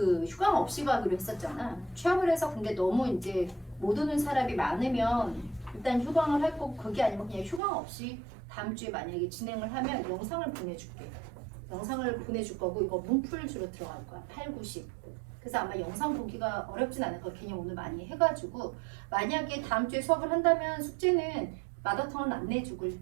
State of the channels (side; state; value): left; drops out; at 7.6 s